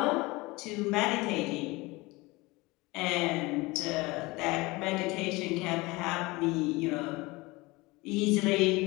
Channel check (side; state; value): right; quieter; 22.7 dB